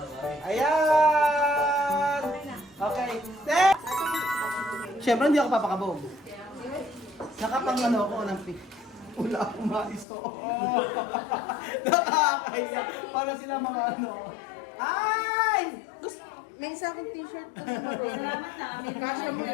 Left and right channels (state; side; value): drops out; right; at 10.1 s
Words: 3. Ayan. Okay. Siyempre, hindi ako papakabog. Nakapang ano ako ng pick. Wala akong maiso. Nakakaya. Para sila mga ano. Ay! May isa akong t-shirt. Salamat ha. May kasya mo